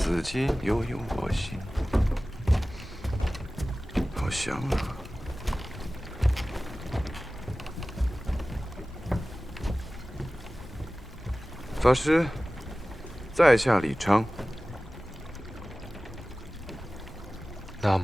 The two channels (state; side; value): normal; both; correlation 0.97